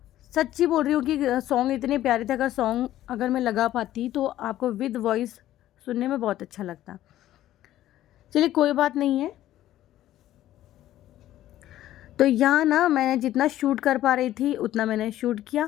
सच्ची बोल रही हूँ कि सॉन्ग इतने प्यारे थे, अगर मैं लगा पाती तो आपको विद वॉइस सुनने में बहुत अच्छा लगता। चलिए कोई बात नहीं है। तो यहाँ ना मैं जितना शूट कर पा रही थी उतना मैंने शूट किया,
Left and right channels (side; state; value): right; quieter; 13.5 dB